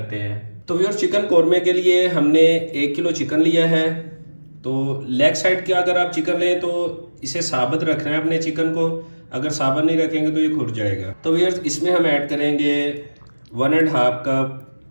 हैं। तो व्यूअर्स, चिकन कोरमे के लिए हमने 1 किलो चिकन लिया है। तो लेग साइड के अगर आप चिकन लें तो इसे साबित रखना है अपने चिकन को। अगर साबित नहीं रखेंगे तो ये खुर जाएगा। तो व्यूअर्स, इसमें हम ऐड करेंगे 1.5 कप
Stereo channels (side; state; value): both; inverted; correlation -1.00